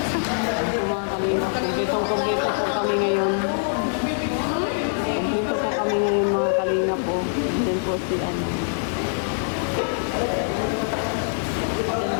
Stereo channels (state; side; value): silent; right; digital silence